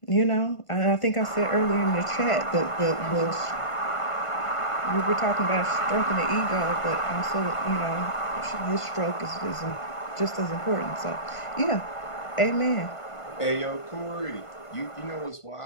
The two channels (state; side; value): late; right; 1.5 ms